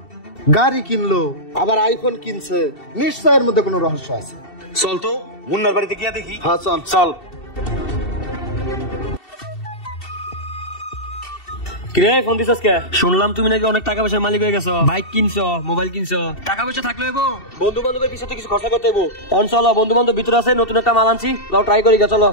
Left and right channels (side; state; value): right; late; 2.7 ms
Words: গাড়ি কিনলো আবার আইফোন কিনছে, নিশ্চয় এর মধ্যে কোনো রহস্য আছে। চল তো মুন্নার বাড়িতে গিয়ে দেখি। হ্যাঁ চল চল। কিরে ফোন দিছস কে? শুনলাম তুমি নাকি অনেক টাকা পয়সার মালিক হয়ে গেছো, বাইক কিনছো, মোবাইল কিনছো। টাকা পয়সা থাকলে হইবো, বন্ধু বান্ধবের পিছনে কিছু খরচা করতে হইবো। অন চলো, বন্ধু বান্ধব ভিতরে আছে, নতুন একটা মাল আনছি, লও ট্রাই করি গা। চলো।